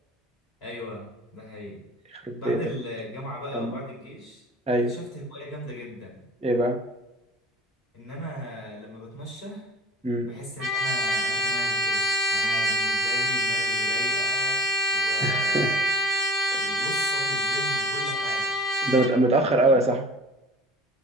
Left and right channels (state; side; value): normal; both; correlation 0.43